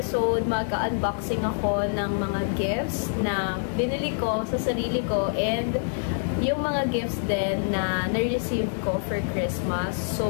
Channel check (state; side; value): silent; right; digital silence